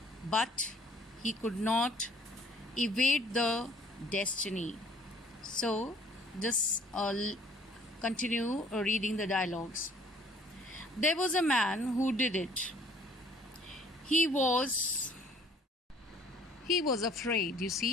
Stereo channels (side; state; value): both; normal; correlation 0.57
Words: but he could not evade the destiny. So just continue reading the dialogues. There was a man who did it. He was afraid, you